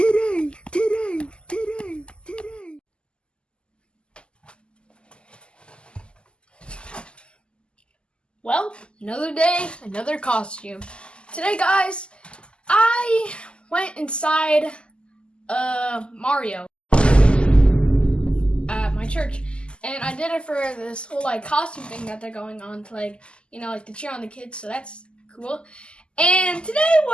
Well, another day, another costume. Today, guys, I went inside Mario at my church, and I did it for this whole costume thing that they're going on to to cheer on the kids. So that's cool. And today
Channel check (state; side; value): late; right; 0.051 ms